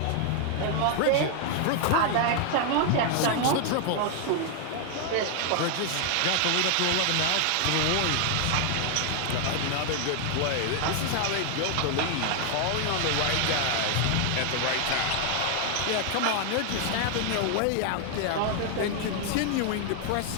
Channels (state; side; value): different; both; correlation 0.00